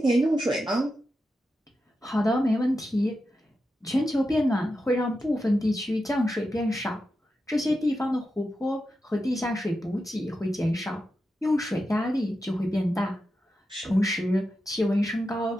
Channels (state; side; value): normal; both; correlation 0.89